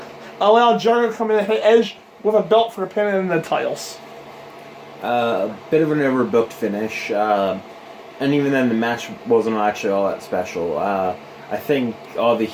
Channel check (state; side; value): identical; both; correlation 1.00